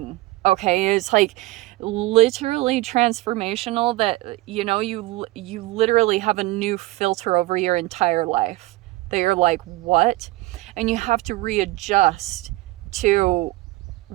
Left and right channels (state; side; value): quieter; left; 19.5 dB